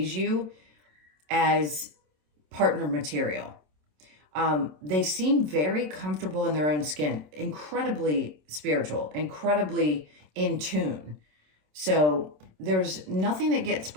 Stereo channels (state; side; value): late; left; 27 ms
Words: you as partner material. They seem very comfortable in their own skin, incredibly spiritual, incredibly in tune. So there's nothing that gets